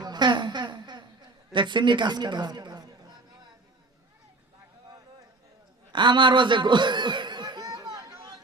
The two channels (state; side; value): quieter; left; 3.1 dB